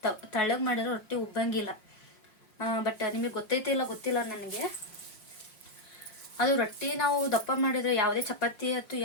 ತಳ್ಳಗೆ ಮಾಡಿದ್ರೆ ರೊಟ್ಟಿ ಉಬ್ಬಂಗಿಲ್ಲ. ಬಟ್ ನಿಮಗೆ ಗೊತ್ತಿಲ್ಲ ನನಗೆ. ಅದು ರೊಟ್ಟಿ ನಾವು ದಪ್ಪ ಮಾಡಿದರೆ ಯಾವುದೇ ಚಪಾತಿ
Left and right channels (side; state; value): right; late; 5.6 ms